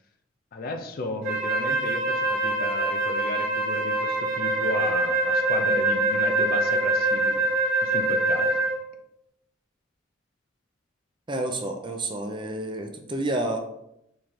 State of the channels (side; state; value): both; normal; correlation 0.32